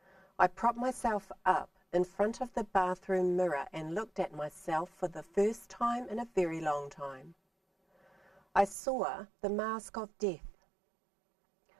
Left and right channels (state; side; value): drops out; left; at 8.8 s